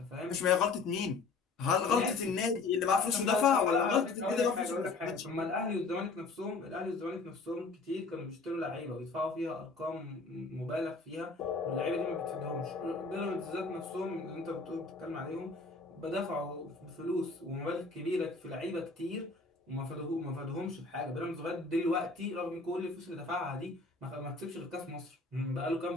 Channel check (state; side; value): quieter; right; 4.0 dB